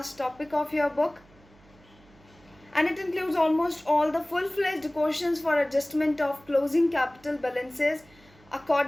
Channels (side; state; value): right; noise; hum, 27 dB below the sound